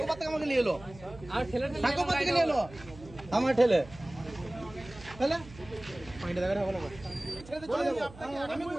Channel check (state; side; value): noise; right; hum, 18 dB below the sound